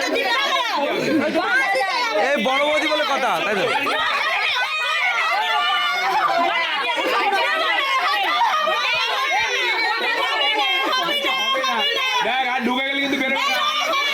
এই বড় বৌদি বলে কথা তাই তো? ঢুকে গেলে কিন্তু বেরোবে না।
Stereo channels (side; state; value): both; identical; correlation 1.00